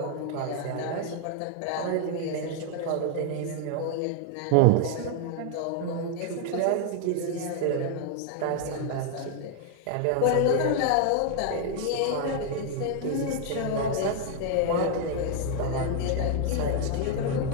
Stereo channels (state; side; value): different; both; correlation 0.00